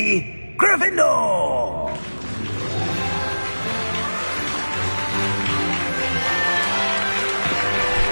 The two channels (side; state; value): both; inverted; correlation -1.00